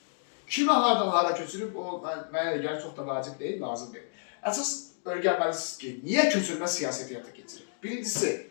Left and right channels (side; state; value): right; silent; digital silence